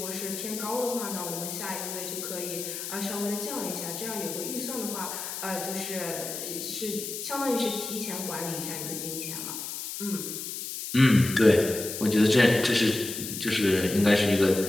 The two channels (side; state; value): left; noise; hiss, 7 dB below the sound